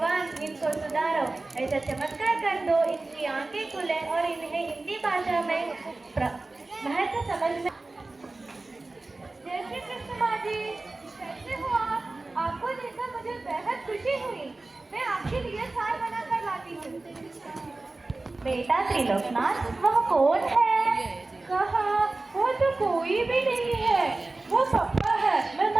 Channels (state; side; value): quieter; left; 3.2 dB